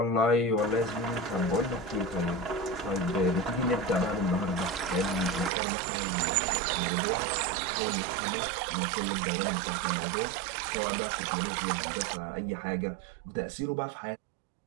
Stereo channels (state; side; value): drops out; left; at 5.5 s